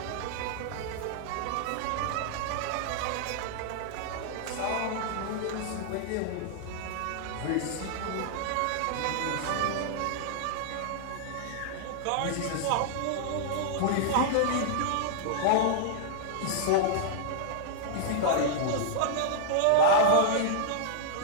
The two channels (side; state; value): both; different; correlation -0.01